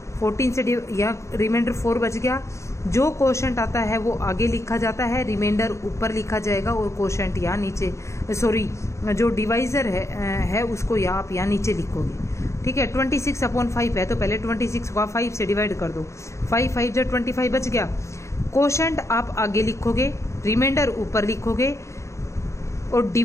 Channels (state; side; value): late; right; 0.14 ms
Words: 14 से या रिमाइंडर 4 बच गया। जो क्वोशंट आता है वो आगे लिखा जाता है, रिमाइंडर ऊपर लिखा जाएगा, और क्वोशंट यहाँ नीचे, सॉरी जो डिवाइजर है उसको आप यहाँ नीचे लिखोगे। ठीक है। 26/5 है, तो पहले 26 को आप 5 से डिवाइड कर दो, 5 5 जा 25 बच गया। क्वोशंट आप आगे लिखोगे, रिमाइंडर ऊपर लिखोगे, और